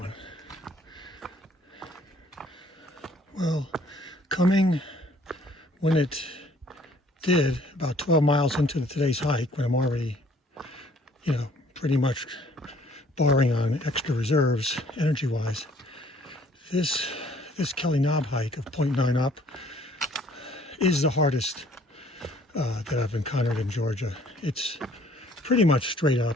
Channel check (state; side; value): normal; both; correlation 0.59